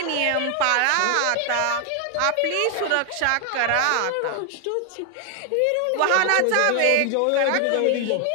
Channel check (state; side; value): different; both; correlation 0.00